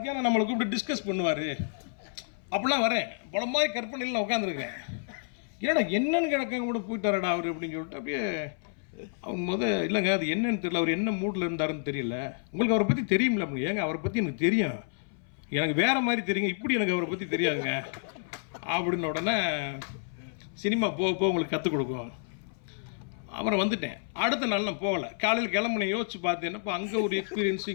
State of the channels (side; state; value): right; silent; 58 dB below the other